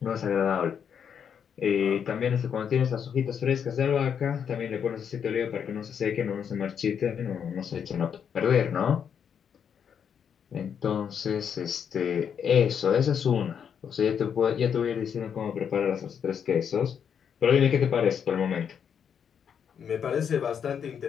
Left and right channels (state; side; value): quieter; right; 7.7 dB